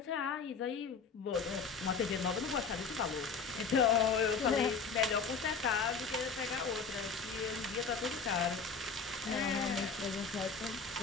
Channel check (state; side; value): quieter; right; 5.1 dB